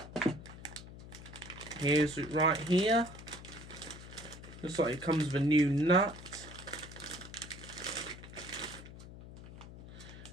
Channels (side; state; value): left; noise; hum, 14 dB below the sound